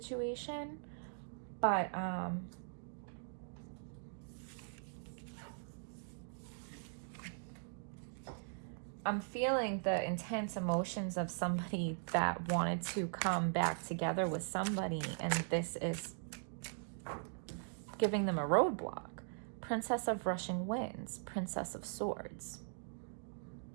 But I'm feeling the intense emotions of somebody that wanted to come back together with somebody, and this is giving them a roadblock. Princess of Rushing Winds, Princess of Swords.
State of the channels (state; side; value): silent; left; digital silence